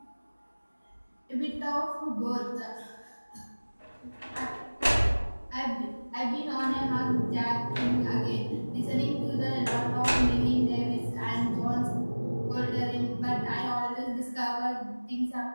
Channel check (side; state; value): both; inverted; correlation -1.00